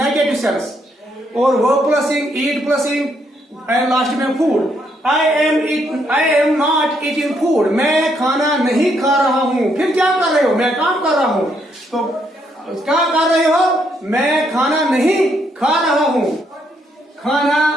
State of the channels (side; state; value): both; normal; correlation 0.74